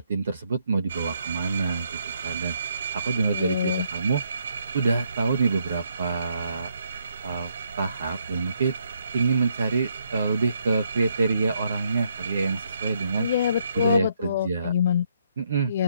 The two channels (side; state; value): both; inverted; correlation -0.73